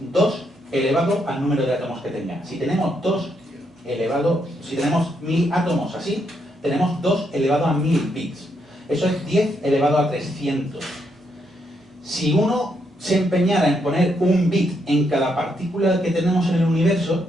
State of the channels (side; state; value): both; normal; correlation 0.77